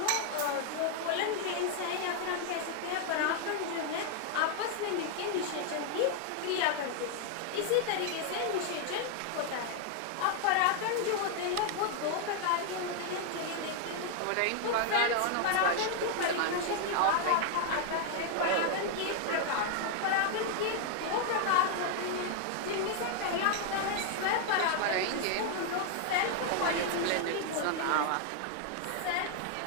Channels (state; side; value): different; both; correlation 0.00